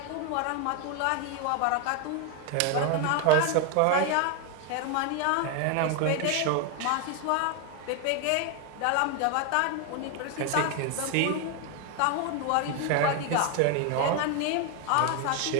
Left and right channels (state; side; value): different; both; correlation 0.01